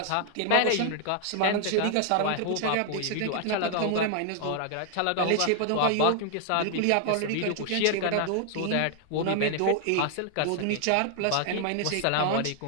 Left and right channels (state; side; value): different; both; correlation 0.00